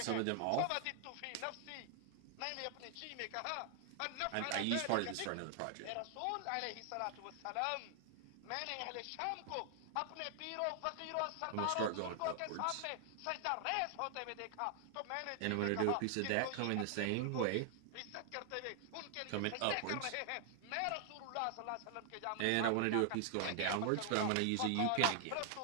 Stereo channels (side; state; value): both; different; correlation 0.00